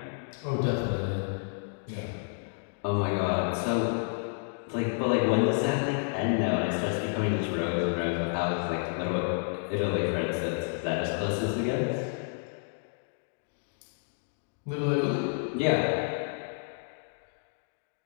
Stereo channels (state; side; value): silent; right; 58 dB below the other